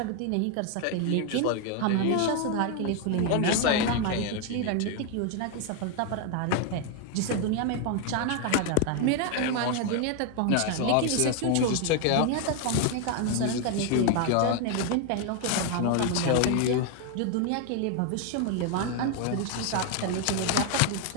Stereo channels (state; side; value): different; both; correlation 0.01